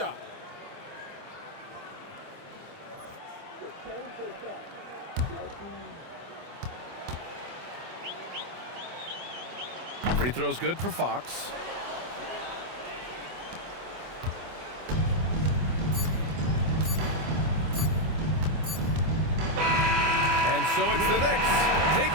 Free throw's good for Fox. And so it's the Knicks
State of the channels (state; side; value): late; left; 24 ms